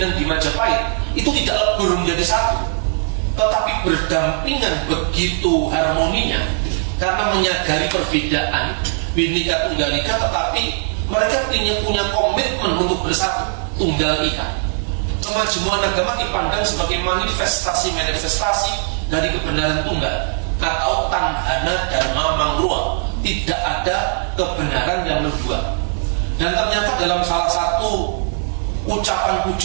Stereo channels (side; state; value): left; silent; 64 dB below the other